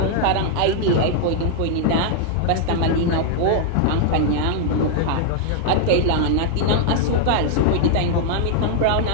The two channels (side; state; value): both; different; correlation 0.00